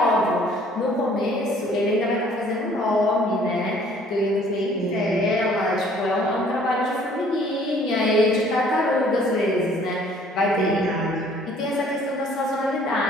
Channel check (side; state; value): both; normal; correlation 0.57